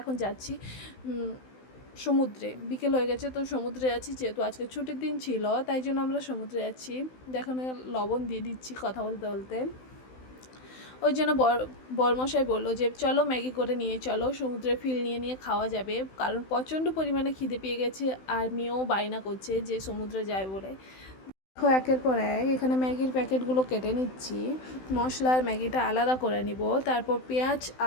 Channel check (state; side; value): late; right; 16 ms